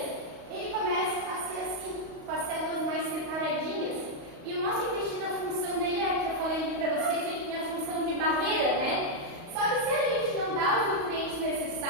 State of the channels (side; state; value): left; late; 35 ms